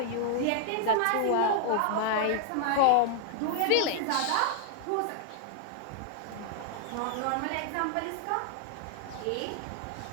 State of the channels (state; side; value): different; both; correlation 0.00